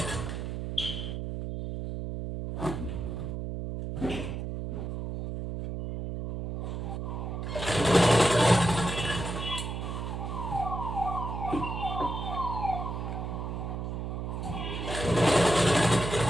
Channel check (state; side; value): noise; right; hum, 4 dB below the sound